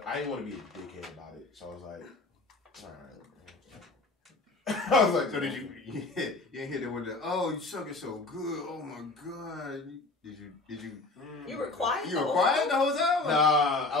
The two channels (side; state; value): right; quieter; 3.3 dB